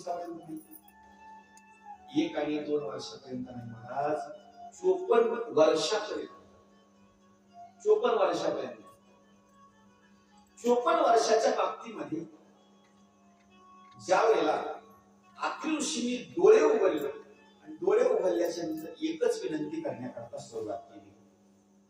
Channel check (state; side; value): identical; both; correlation 1.00